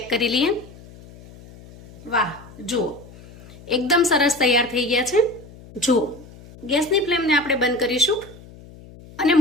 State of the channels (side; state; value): left; noise; hum, 20 dB below the sound